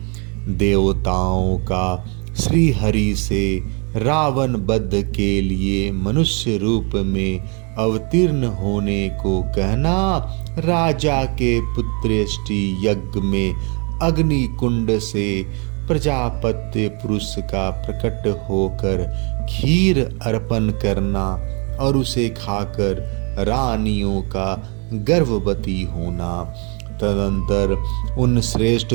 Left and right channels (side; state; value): left; quieter; 35.1 dB